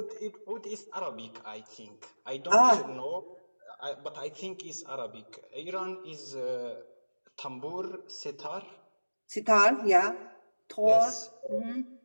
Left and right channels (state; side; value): inverted; both; correlation -1.00